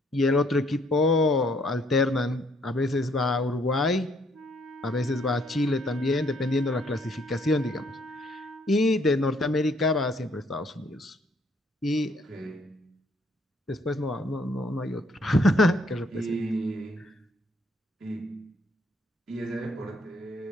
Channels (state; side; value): normal; both; correlation 0.67